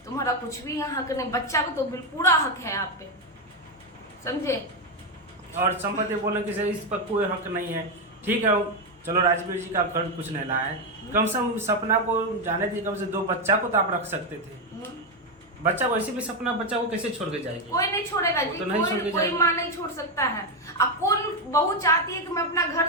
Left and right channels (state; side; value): normal; both; correlation 0.07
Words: तुम्हारा कुछ भी यहाँ हक नहीं। बच्चा को तो पूरा हक है आप पे, समझे? और संपत्ति बोले कि इस पर कोई हक नहीं है। ठीक है, चलो राजवीर जी का घर कुछ नहीं लाए, कम से कम सपना को जाने दी, कम से 2 बच्चा को तो आप रख सकते थे। बच्चा वैसे भी सपना बच्चा को कैसे छोड़ के जाएगी? कोई नहीं छोड़ेगा जी, तो कोई माँ नहीं छोड़ सकता है। अब कौन बहू चाहती है कि मैं अपना घर